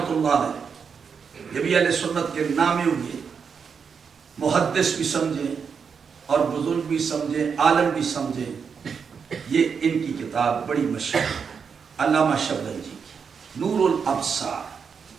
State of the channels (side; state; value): left; quieter; 6.2 dB